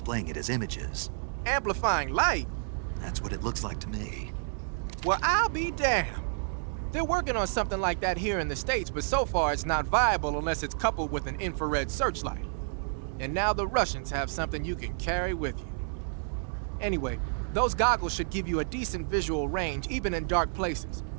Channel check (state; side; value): silent; left; digital silence